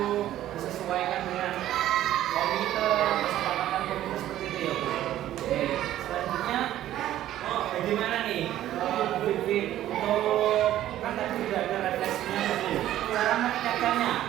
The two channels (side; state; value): left; quieter; 13.0 dB